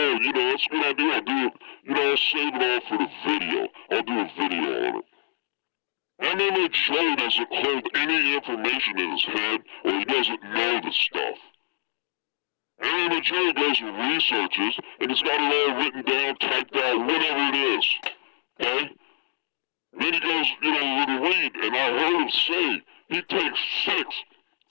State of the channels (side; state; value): right; silent; digital silence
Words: a good idea. I'll do it, I'll save it all for the video. I'll do a video on it. MMA Joe doesn't hold any information in his head, or he doesn't know the stuff. MMA Joe goes and researches, and he's got it all written down, typed out, whatever it is. Okay? Then he goes, with a read, and I heard him say he takes 6,